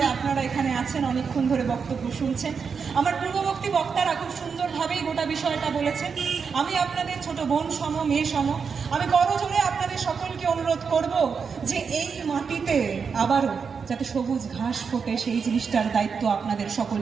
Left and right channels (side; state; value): left; quieter; 5.8 dB